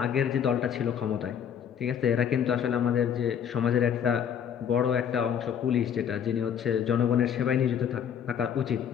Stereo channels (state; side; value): quieter; right; 8.4 dB